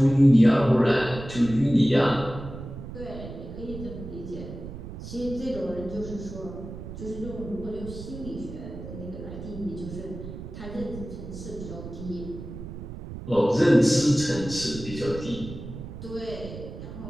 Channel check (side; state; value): right; noise; rumble, 11 dB below the sound